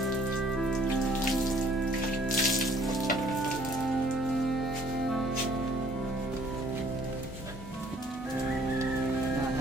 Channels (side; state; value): both; normal; correlation 0.59